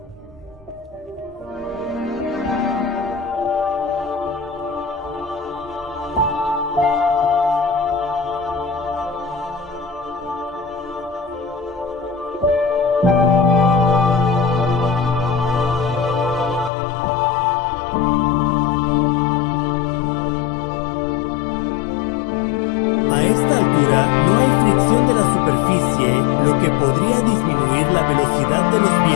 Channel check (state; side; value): drops out; right; at 16.7 s